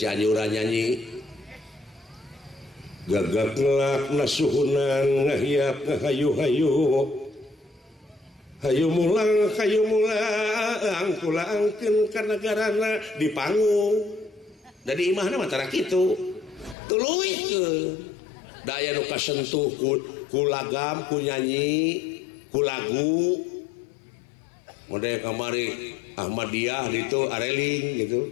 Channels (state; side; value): drops out; right; at 16.8 s